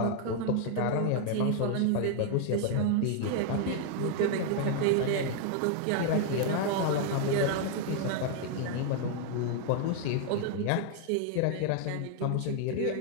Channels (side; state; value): both; different; correlation 0.00